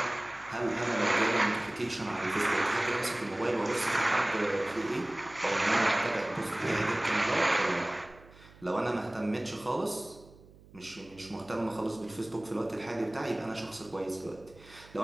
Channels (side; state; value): right; noise; hum, 23 dB below the sound